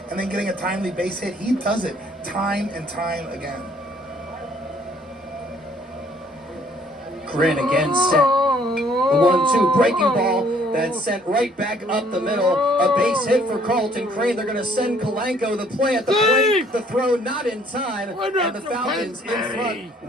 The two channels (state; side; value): normal; both; correlation 0.61